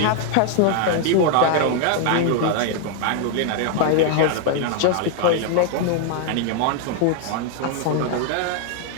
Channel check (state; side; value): different; both; correlation 0.00